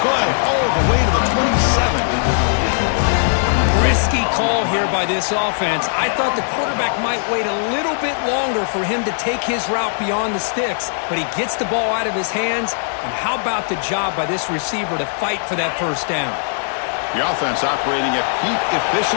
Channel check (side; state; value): right; silent; digital silence